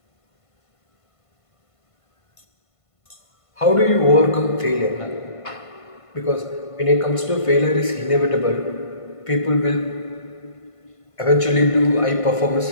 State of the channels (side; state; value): right; late; 1.5 ms